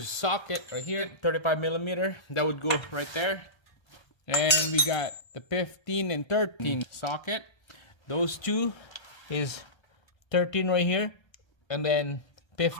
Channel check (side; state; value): right; late; 1.3 ms